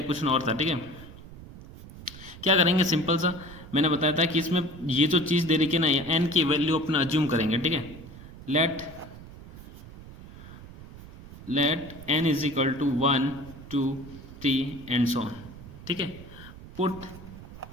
क्वेश्चन और था, ठीक है। क्या करेंगे? सिंपल सा मैंने बताया था कि इसमें ये जो चीज़ दे रखी है ना, एन की वैल्यू अपना अज्यूम करेंगे, ठीक है। Let n is equal to 1 2 3 and so on, ठीक है। Put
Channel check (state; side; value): noise; right; rumble, 16 dB below the sound